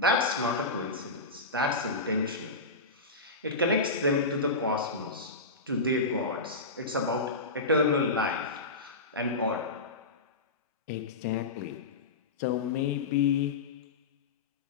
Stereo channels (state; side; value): quieter; right; 3.3 dB